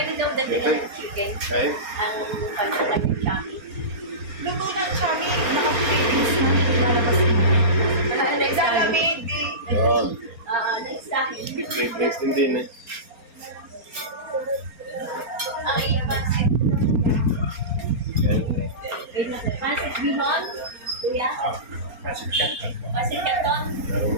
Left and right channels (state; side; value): late; left; 4.3 ms